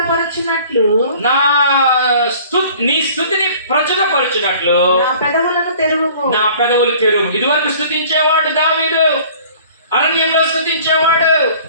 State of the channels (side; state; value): both; inverted; correlation -0.50